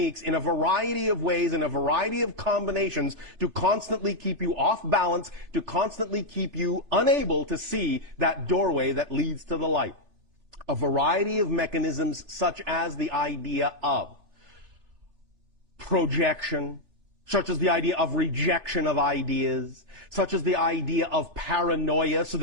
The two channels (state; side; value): late; left; 3.0 ms